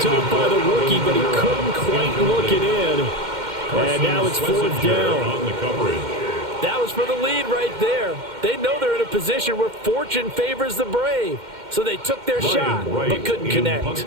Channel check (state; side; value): late; left; 2.1 ms